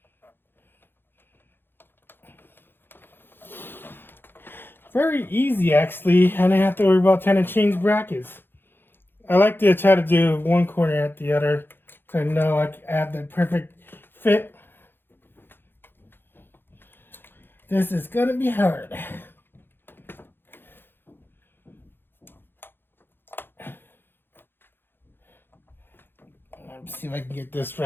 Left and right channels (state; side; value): late; right; 0.10 ms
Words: Very easy actually. I didn't have to worry about trying to change brackets. I like to try to do one corner at the other so I know I can add the perfect fit. This is gonna be hard. Let's see if I can get this